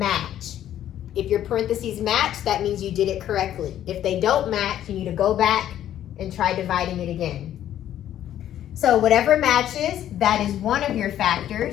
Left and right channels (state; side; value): quieter; right; 11.5 dB